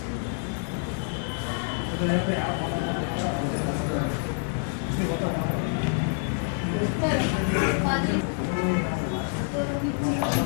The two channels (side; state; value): right; silent; 56 dB below the other